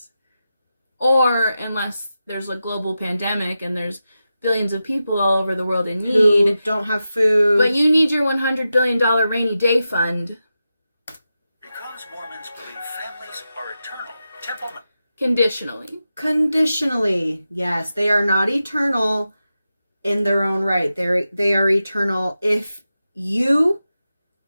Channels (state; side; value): inverted; both; correlation -0.91